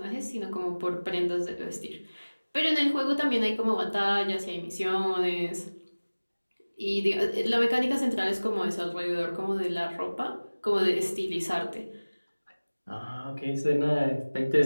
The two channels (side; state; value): both; inverted; correlation -1.00